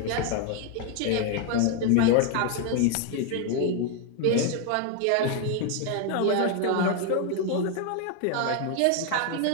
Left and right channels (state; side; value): different; both; correlation 0.01